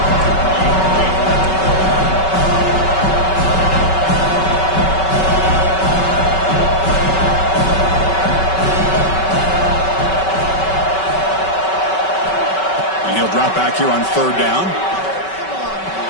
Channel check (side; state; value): right; late; 5.3 ms